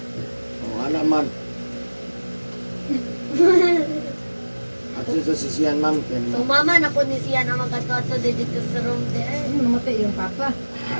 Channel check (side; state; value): both; inverted; correlation -1.00